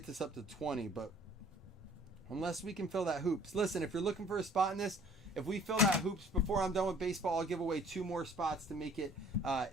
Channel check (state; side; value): normal; both; correlation 0.54